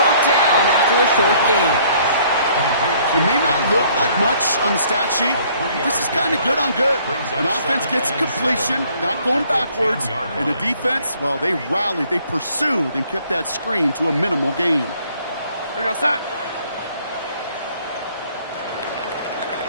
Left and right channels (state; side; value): inverted; both; correlation -0.61